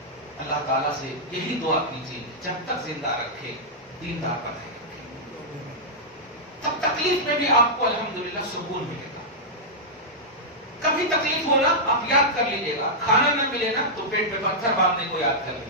اللہ تعالیٰ سے یہی دعا کیجیے جب تک زندہ رکھے دیندار بنائے رکھے, تب تکلیف میں بھی آپ کو الحمدللہ سکون ملے گا. کبھی تکلیف ہونا آپ یاد کر لیجیے گا, کھانا نہ ملے نا تو پیٹ پہ پتھر باندھنے کو یاد کر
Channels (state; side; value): normal; both; correlation -0.09